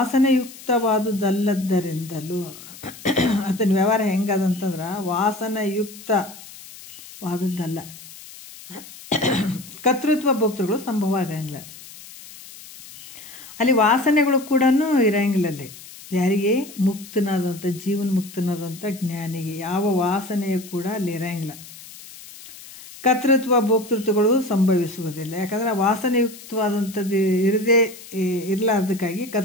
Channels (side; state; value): left; noise; hiss, 17 dB below the sound